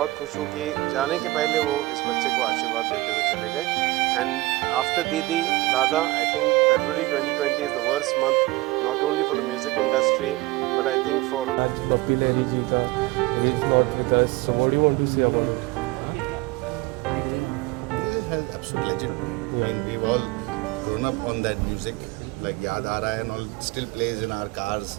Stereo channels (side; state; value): left; quieter; 20.2 dB